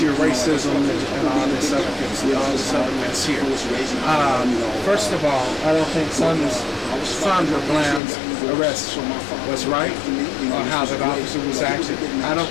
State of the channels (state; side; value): drops out; right; at 8.0 s